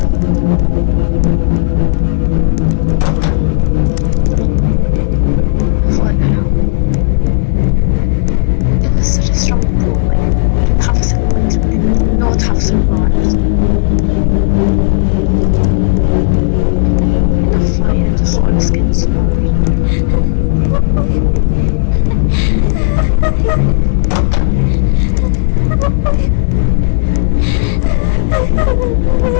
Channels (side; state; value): right; silent; digital silence